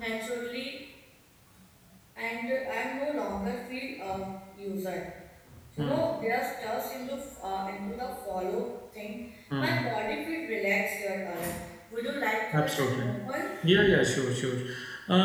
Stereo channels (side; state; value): both; identical; correlation 1.00